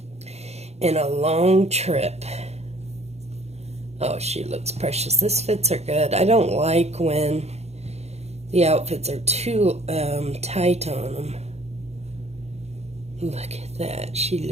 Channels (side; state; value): left; late; 0.31 ms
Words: and a long trip. Oh, she looks precious. This fits her good. I don't like when the outfits are too tight on them. Look at that. She